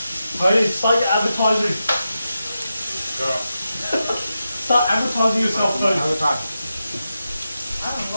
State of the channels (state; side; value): inverted; both; correlation -0.89